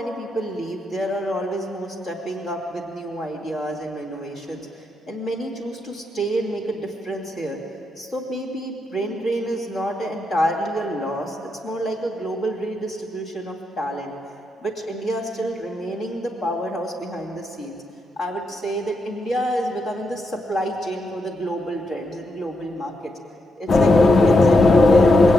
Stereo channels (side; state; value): both; normal; correlation 0.82